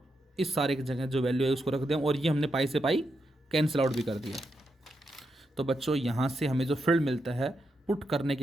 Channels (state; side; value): normal; both; correlation 0.84